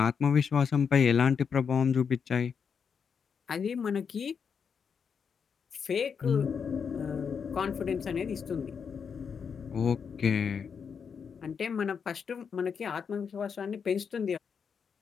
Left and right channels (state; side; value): quieter; right; 6.5 dB